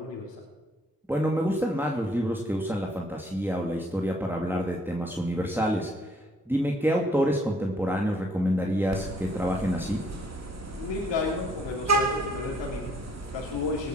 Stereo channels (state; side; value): normal; both; correlation 0.64